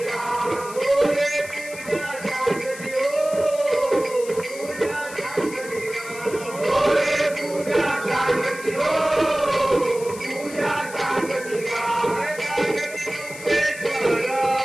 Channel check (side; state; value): left; noise; hiss, 15 dB below the sound